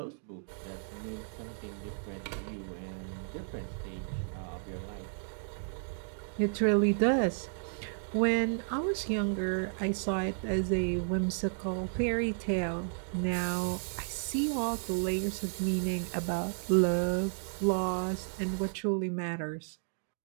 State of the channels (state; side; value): silent; left; digital silence